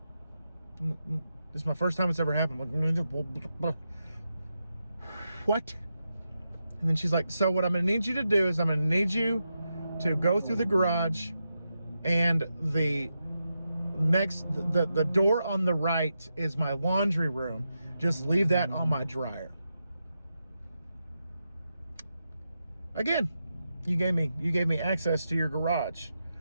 This is my first time it's ever happened. What? And then she's like, so what I'm gonna need you to do is I'm gonna need you to go through the garage, and the door on the right is my laundry room. Just leave that on my dryer. Again, you gave me access to your garage.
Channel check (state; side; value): inverted; both; correlation -0.87